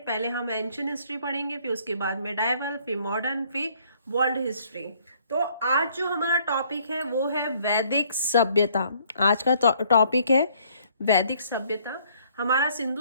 हम एंशियंट हिस्ट्री पढ़ेंगे, फिर उसके बाद मेडाइवल, फिर मॉडर्न, फिर वर्ल्ड हिस्ट्री। तो आज जो हमारा टॉपिक है वो है वैदिक सभ्यता। आज का टॉपिक है वैदिक सभ्यता। हमारा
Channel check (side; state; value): both; inverted; correlation -0.63